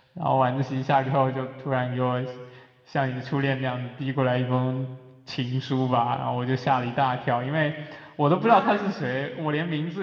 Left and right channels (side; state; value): both; identical; correlation 1.00